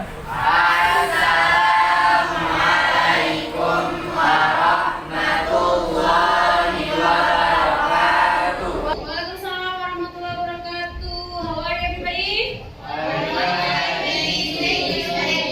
Assalamualaikum warahmatullahi wabarakatuh. Waalaikumsalam warahmatullahi wabarakatuh. How are you, everybody?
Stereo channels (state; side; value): identical; both; correlation 1.00